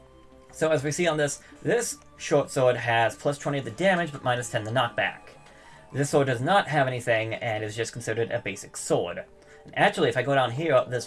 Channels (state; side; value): identical; both; correlation 1.00